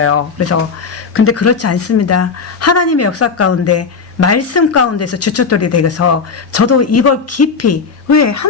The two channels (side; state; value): right; quieter; 5.2 dB